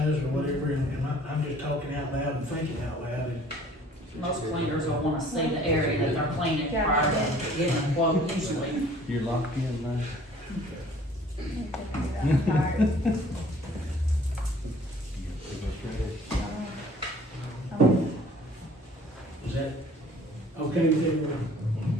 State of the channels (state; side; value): normal; both; correlation 0.53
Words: or whatever, and I'm just talking out loud and thinking out loud, and Most cleaners will wanna see the area that they're cleaning Yeah. prior to getting a quote usually. You're locked in now. I'm tired. is that okay with everyone?